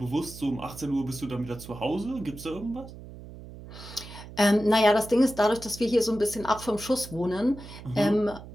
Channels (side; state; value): right; noise; hum, 15 dB below the sound